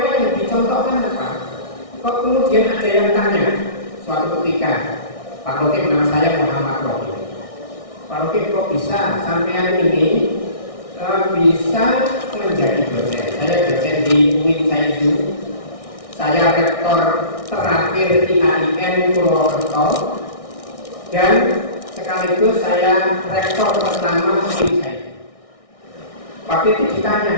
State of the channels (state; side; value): late; right; 1.6 ms